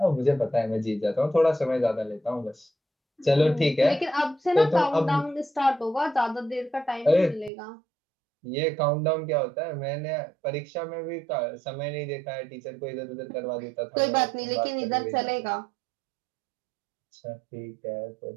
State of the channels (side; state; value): left; drops out; at 7.5 s